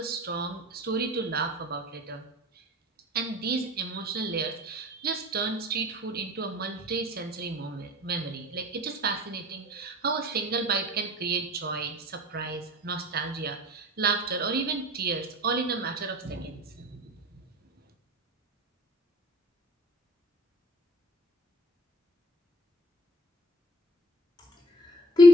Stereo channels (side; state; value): both; normal; correlation 0.47